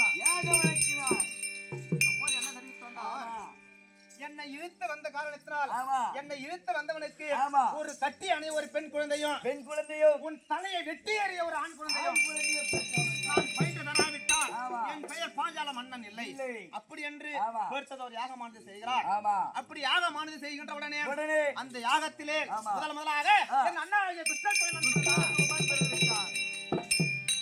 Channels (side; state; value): both; identical; correlation 1.00